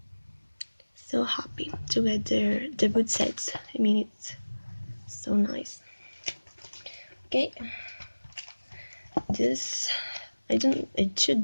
So happy to get their debut sets. It's so nice. Okay, this it should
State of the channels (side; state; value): both; inverted; correlation -1.00